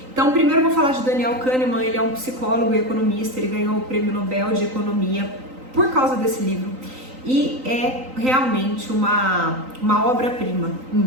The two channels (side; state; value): left; late; 3.9 ms